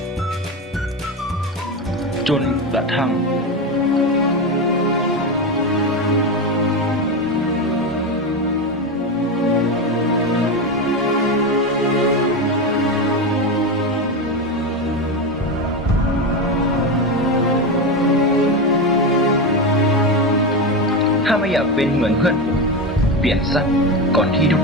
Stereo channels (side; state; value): both; normal; correlation 0.16